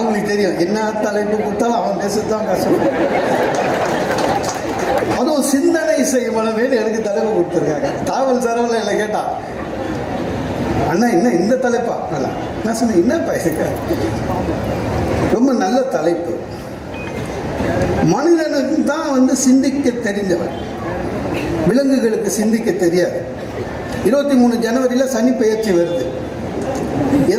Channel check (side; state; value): both; identical; correlation 1.00